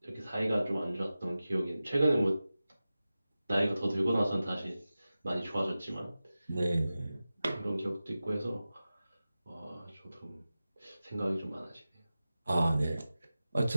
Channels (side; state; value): both; inverted; correlation -0.95